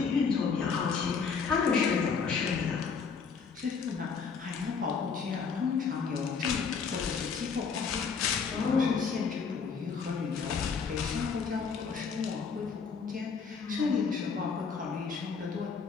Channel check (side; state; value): right; quieter; 5.6 dB